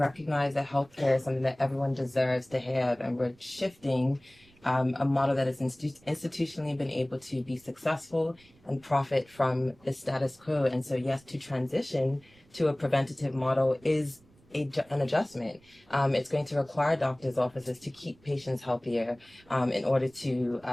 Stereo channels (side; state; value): right; noise; rumble, 29 dB below the sound